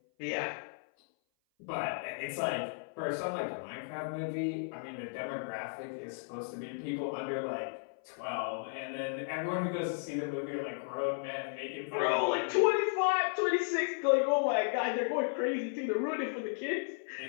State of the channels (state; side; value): silent; right; 55 dB below the other